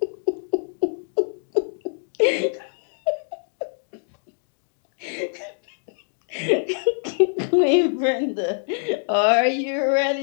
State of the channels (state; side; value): silent; right; digital silence